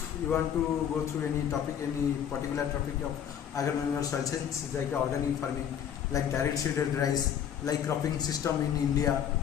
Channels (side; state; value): right; quieter; 9.0 dB